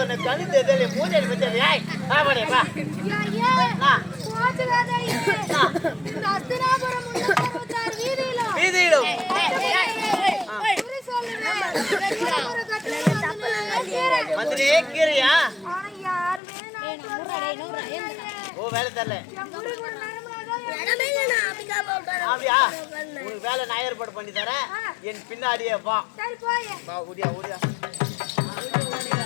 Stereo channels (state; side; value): drops out; right; at 16.4 s